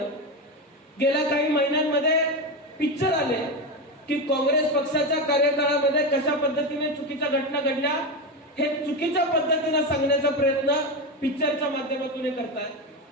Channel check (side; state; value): both; normal; correlation 0.16